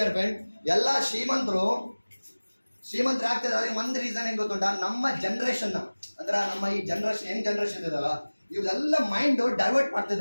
ಫ್ರೆಂಡ್, ಎಲ್ಲ ಶ್ರೀಮಂತರು ಆಗ್ತಿದ್ದಾರೆ. ಅದಕ್ಕೆ ಒಂದು ರೀಸನ್ ಏನ್ ಗೊತ್ತುಂಟ, ನಮ್ಮ ಜನರೇಷನ್ ಅಂದ್ರೆ ನಮ್ಮ ಈ ಜನರೇಷನ್ ಯಂಗ್ ಜನರೇಷನ್ ಇದಲ್ಲ, ಇವರೆಲ್ಲ ಮೈಂಡ್ ಡೈವರ್ಟ್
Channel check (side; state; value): both; inverted; correlation -1.00